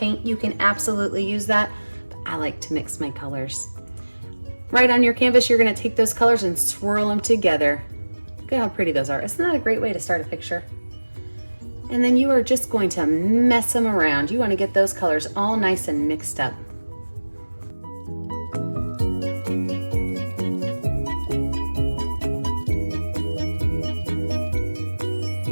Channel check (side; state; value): both; inverted; correlation -1.00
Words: you can absolutely use that, but I like to mix my colors. Right on your canvas, you're going to take those colors and swirl them together. Look at how pretty those are. Isn't that a great way to start a picture? And then you are just going to mess them around. You want to get those colors all nice and mixed up.